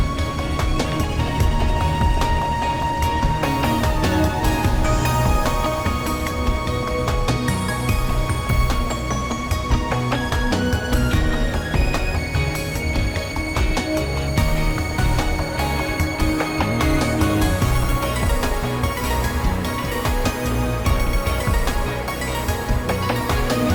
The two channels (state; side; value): identical; both; correlation 1.00